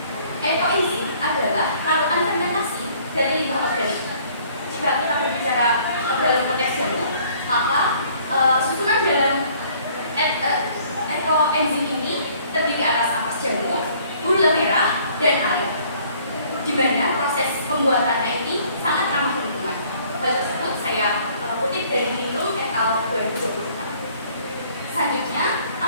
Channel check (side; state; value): both; inverted; correlation -0.58